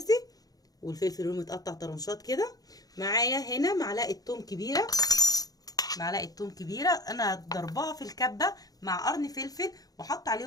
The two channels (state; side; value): late; right; 0.18 ms